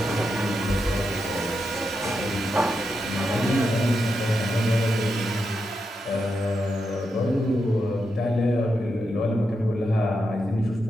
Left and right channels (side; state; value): both; normal; correlation 0.85